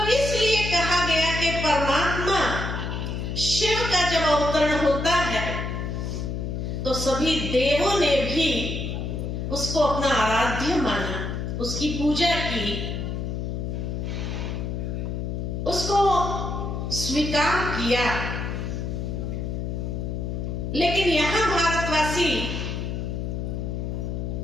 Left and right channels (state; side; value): noise; left; hum, 3 dB below the sound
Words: इसलिए कहा गया कि परमात्मा शिव का जब अवतरण होता है तो सभी देवों ने भी उसको अपना आराध्य माना, उसकी पूजा की, उसको स्वीकार किया। लेकिन यहां भारत भारतवासी